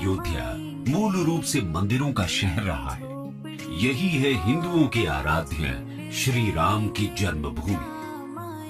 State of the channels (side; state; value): both; identical; correlation 1.00